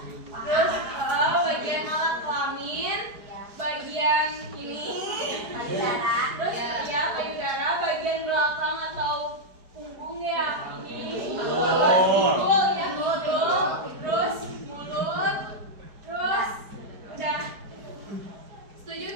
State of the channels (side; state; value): left; late; 4.8 ms